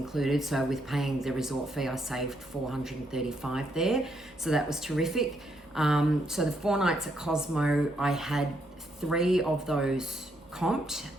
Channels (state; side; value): normal; both; correlation 0.76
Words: So with paying the resort fee, I saved $435 there. So that was terrific. So the 4 nights at Cosmo, I had 3 of those comped.